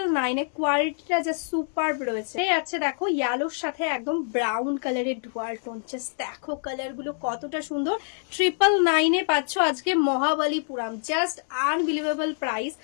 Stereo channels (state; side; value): silent; right; digital silence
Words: এ। কোয়ালিটিটা জাস্ট সুপার রয়েছে। আছে দেখো ইয়েলোর সাথে একদম ব্রাউন কালারের ডুয়াল টোন, জাস্ট দেখো কালার গুলো কতটা সুন্দর। 999 এ পাচ্ছ আজকে মহাবলীপুরম, জাস্ট আনবিলিভেবল প্রাইস।